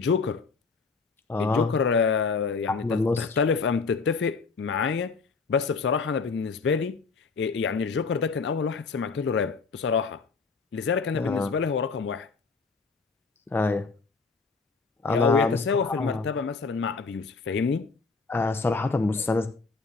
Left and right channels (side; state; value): right; quieter; 4.6 dB